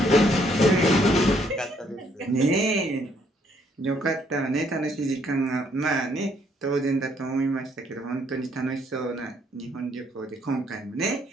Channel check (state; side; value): normal; both; correlation 0.68